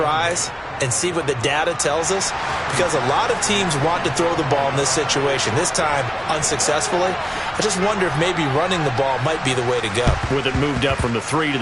and see what the data tells us, because a lot of teams want to throw the ball in this situation. This time, unsuccessfully. I just wonder if maybe running the ball might be the way to go. With it moved up from the 3 to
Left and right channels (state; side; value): identical; both; correlation 1.00